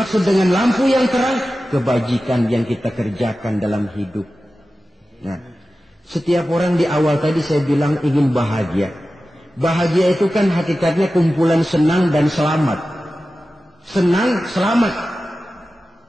dengan lampu yang terang, kebajikan yang kita kerjakan dalam hidup. Nah, setiap orang di awal tadi saya bilang ingin bahagia. Bahagia itu kan hakikatnya kumpulan senang dan selamat. Senang, selamat.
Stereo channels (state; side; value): normal; both; correlation 0.94